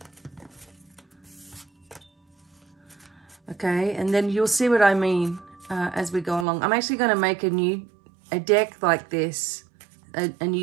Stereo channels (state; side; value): drops out; left; at 6.5 s